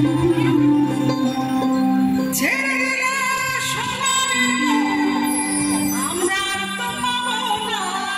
ছেড়ে দিলে সোনা দেব, আমরা তো পাবো না।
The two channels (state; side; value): identical; both; correlation 1.00